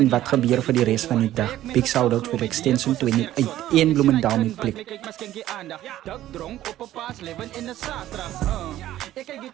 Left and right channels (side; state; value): left; quieter; 13.7 dB